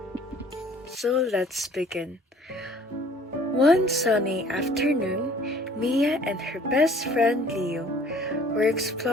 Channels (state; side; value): normal; both; correlation 0.53